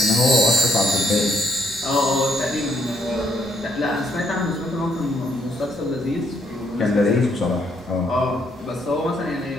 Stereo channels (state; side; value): normal; both; correlation 0.72